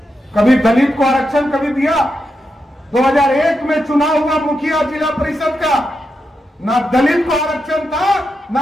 कभी दलित को आरक्षण कभी दिया? 2001 में चुनाव हुआ मुखिया जिला परिषद का, ना दलित को आरक्षण था, ना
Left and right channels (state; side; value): normal; both; correlation 0.86